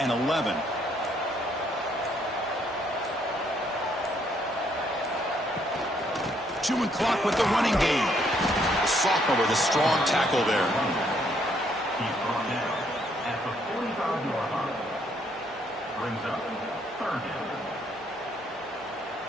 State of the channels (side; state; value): both; normal; correlation 0.70